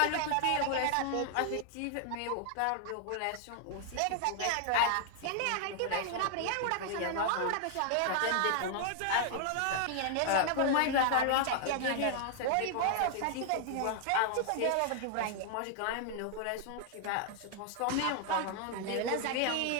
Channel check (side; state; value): both; different; correlation 0.00